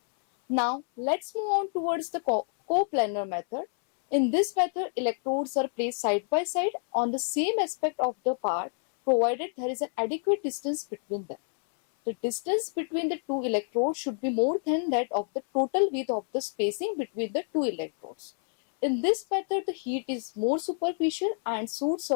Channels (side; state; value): right; silent; 59 dB below the other